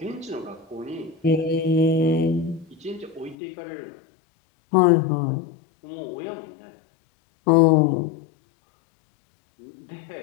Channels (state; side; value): drops out; right; at 3.4 s